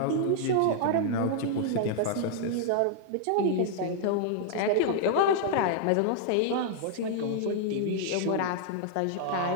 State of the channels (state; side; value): different; both; correlation -0.01